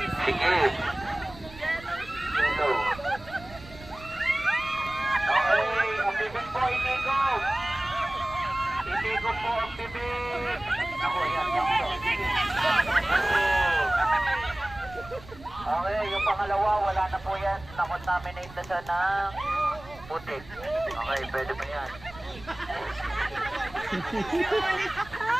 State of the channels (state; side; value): noise; right; rumble, 18 dB below the sound